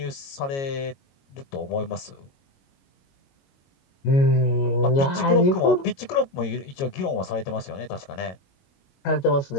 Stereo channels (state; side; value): late; right; 22 ms